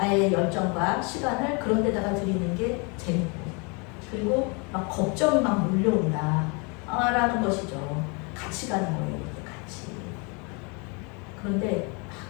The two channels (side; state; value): right; quieter; 32.2 dB